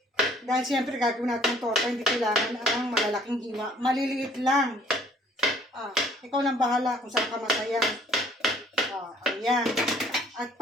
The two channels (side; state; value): both; normal; correlation 0.58